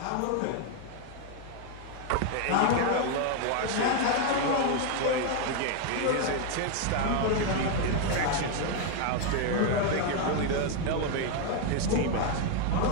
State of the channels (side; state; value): both; different; correlation 0.01